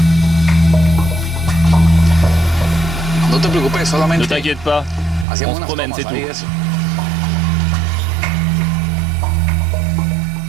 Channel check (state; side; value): drops out; left; at 5.2 s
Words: Ne t'inquiète pas, on se promène, c'est tout.